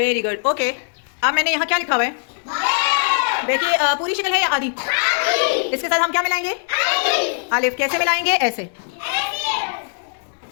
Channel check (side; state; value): right; silent; digital silence